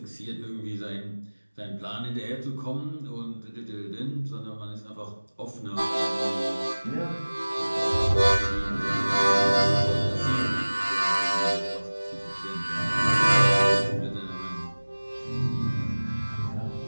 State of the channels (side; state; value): both; inverted; correlation -1.00